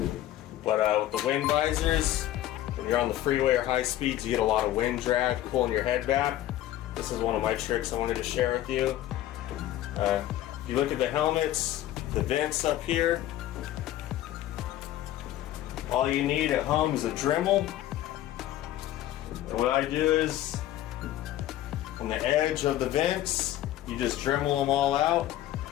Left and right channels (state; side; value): quieter; right; 13.5 dB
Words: But with the wind visors, when you're on the freeway or high speeds, you get a lot of wind drag pulling your head back. This is one of my tricks I wanted to share with you. If you look at the helmets, the vents up here, all you need at home is a Dremel. And what I do is, on the edge of the vents, you just Dremel them all out